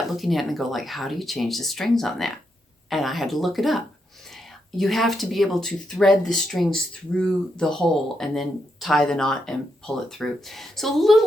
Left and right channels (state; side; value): normal; both; correlation 0.81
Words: looking at it and go like, how do you change the strings on that? And I had to look it up. You have to be able to thread the strings through the hole and then tie the knot and pull it through. So a